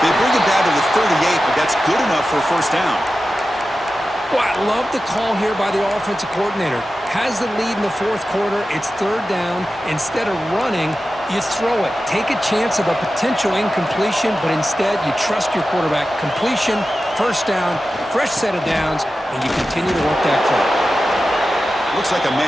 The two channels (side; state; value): both; normal; correlation 0.93